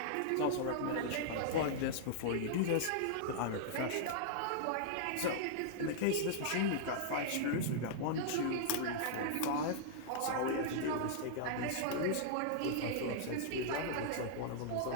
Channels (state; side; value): different; both; correlation -0.02